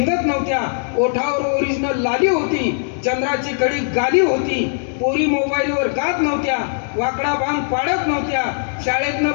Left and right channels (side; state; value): right; silent; digital silence